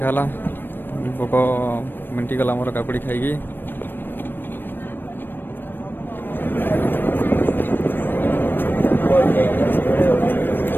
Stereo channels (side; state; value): right; late; 0.095 ms